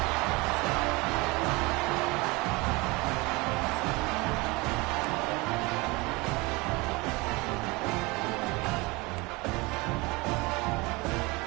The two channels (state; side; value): quieter; left; 24.5 dB